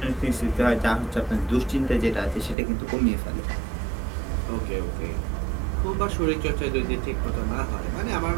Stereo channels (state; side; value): drops out; left; at 2.6 s